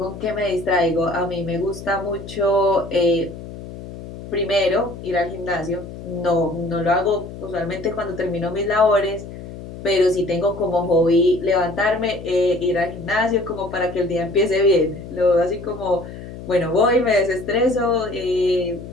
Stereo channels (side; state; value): left; noise; hum, 12 dB below the sound